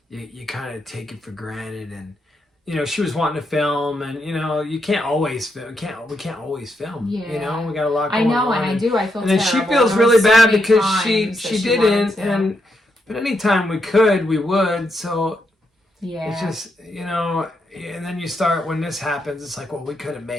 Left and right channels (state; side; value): normal; both; correlation 0.81